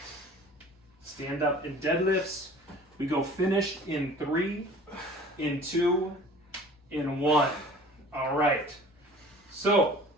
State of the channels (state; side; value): normal; both; correlation 0.45